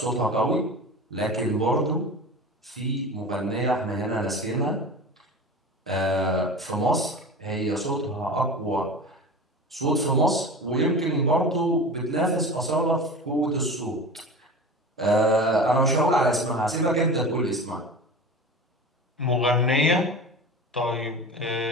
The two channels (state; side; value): normal; both; correlation 0.32